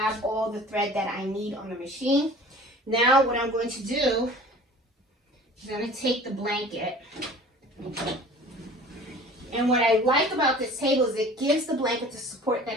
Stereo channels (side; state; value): both; normal; correlation 0.45